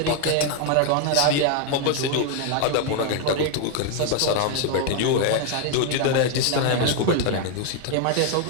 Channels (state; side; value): different; both; correlation 0.01